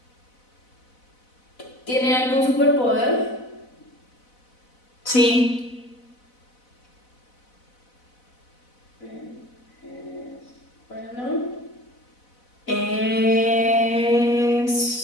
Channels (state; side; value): late; right; 4.0 ms